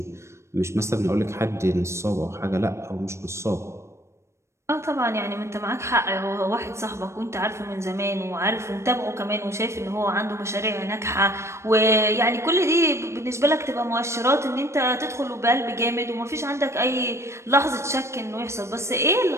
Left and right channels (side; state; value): left; late; 0.13 ms